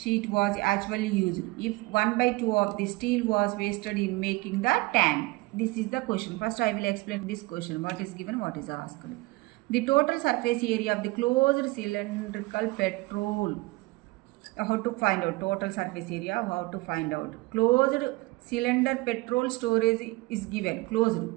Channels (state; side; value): quieter; left; 22.3 dB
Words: was actually used? If 1 by 2 of the steel was wasted in making the tank. This is the question. First I will explain this question. What is given, what is asked. The total surface area of the closed cylindrical petrol. How to find out total surface area? How to find out? Closed cylinder petrol storage is given. Closed.